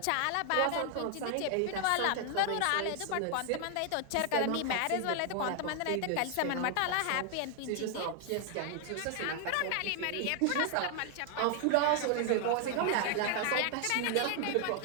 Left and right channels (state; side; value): different; both; correlation 0.00